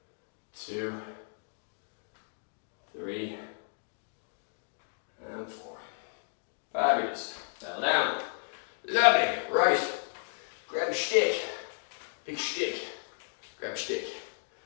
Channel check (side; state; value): right; silent; digital silence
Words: 2, 3, and 4. Fabulous. Bell down. Lovely. Right. Grab a stick. Big stick. Grab a stick.